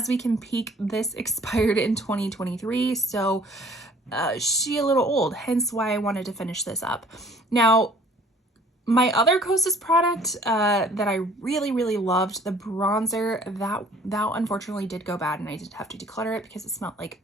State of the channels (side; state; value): both; normal; correlation 0.53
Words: we can peek, this expired in 2023. So she a little old, hence why I wanted to finish this up. Now, my other Kosas product that I really loved, the bronzer, that unfortunately did go bad and I did have to declutter it because it smelled like